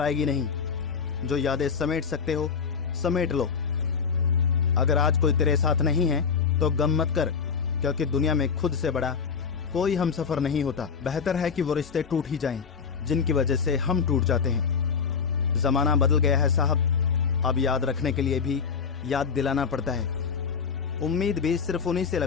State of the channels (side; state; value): right; quieter; 6.1 dB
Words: नहीं। जो यादें समेट सकते हो समेट लो। अगर आज कोई तेरे साथ नहीं है तो गम मत कर, क्योंकि दुनिया में खुद से बड़ा कोई हमसफर नहीं होता। बेहतर है कि वो रिश्ते टूट ही जाएं जिनकी वजह से हम टूट जाते हैं। जमाना बदल गया है साहब, अब याद रखने के लिए भी याद दिलाना पड़ता है। उम्मीद भी सिर्फ उन्हीं से